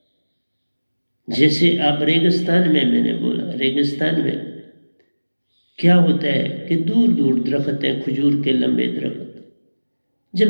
जैसे आप रेगिस्तान में, मैंने बोला रेगिस्तान में क्या होता है कि दूर दूर दरख्त हैं, खजूर के लंबे दरख्त।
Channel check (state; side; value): inverted; both; correlation -1.00